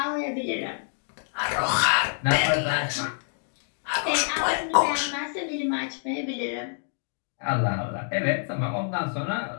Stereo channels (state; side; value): silent; right; digital silence